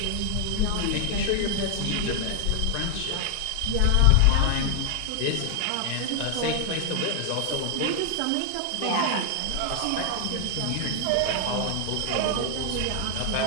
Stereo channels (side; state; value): both; different; correlation 0.00